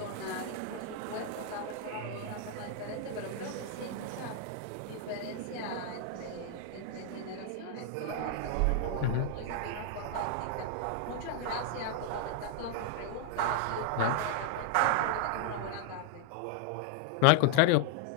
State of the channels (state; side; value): different; both; correlation 0.00